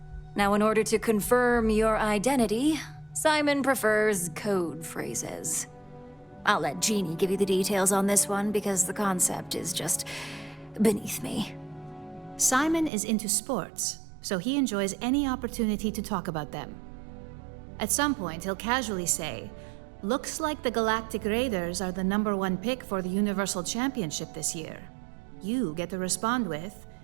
Now, in order to confirm your identity, Simon prefers code phrases. I'll let Jeannie give you the details on this one because the concept is just beneath me. Simon is into sports, so he enjoys any opportunity to talk about them. At some point, he'll casually say, "Looks like the Galactic Raiders are the #1 pick for the Universal Championship this year." You get to respond with,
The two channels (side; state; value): left; drops out; at 12.9 s